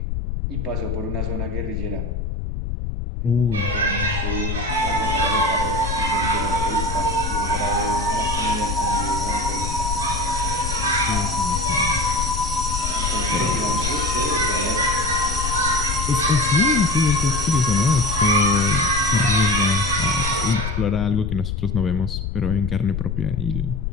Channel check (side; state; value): left; noise; rumble, 3 dB below the sound